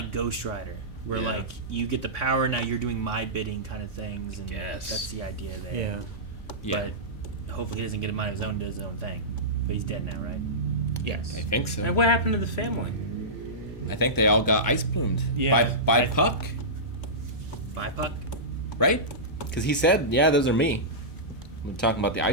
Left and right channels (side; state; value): both; normal; correlation -0.17